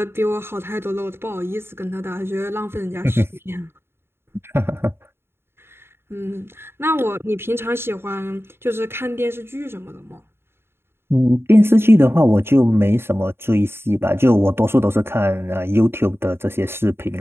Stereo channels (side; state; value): left; late; 0.11 ms